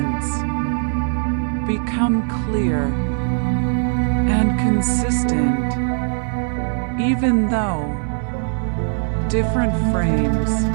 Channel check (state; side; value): silent; left; 59 dB below the other